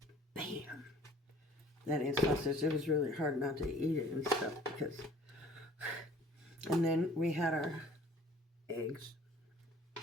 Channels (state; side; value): normal; both; correlation 0.52